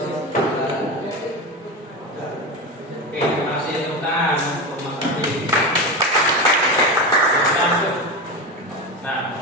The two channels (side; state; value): both; normal; correlation 0.20